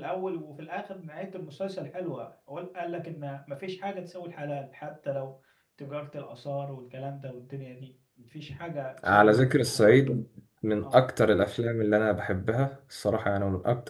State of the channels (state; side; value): identical; both; correlation 1.00